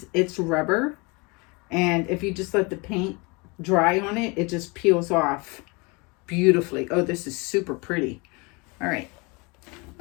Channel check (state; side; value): quieter; right; 28.4 dB